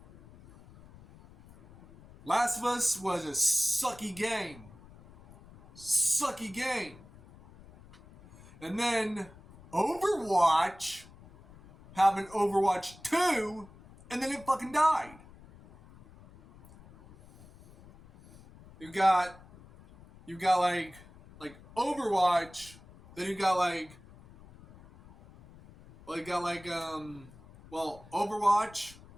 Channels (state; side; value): noise; left; rumble, 22 dB below the sound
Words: Last of Us was a sucky game. Sucky game. And then Overwatch having Overwatch 2 and then it fucking died. You got like Overwatch, then you got Overwatch